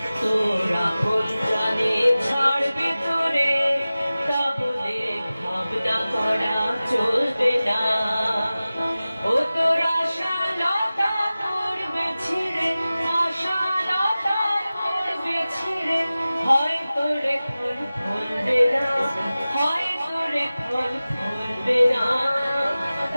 তোর আপনজনে ছাড়বে তোরে, তা বলে ভাবনা করা চলবে না। ও তোর আশালতা পড়বে ছিঁড়ে, আশালতা পড়বে ছিঁড়ে, হয় তোরে ফল ফুলবে না, হয় তোরে ফল ফুলবে না।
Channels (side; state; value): both; inverted; correlation -0.97